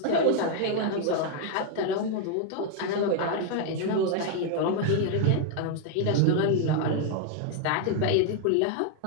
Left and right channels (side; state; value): both; different; correlation 0.00